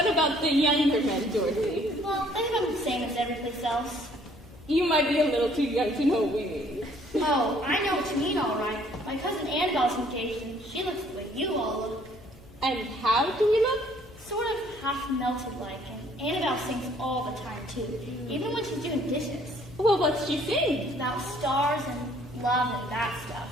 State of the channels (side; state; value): both; normal; correlation 0.61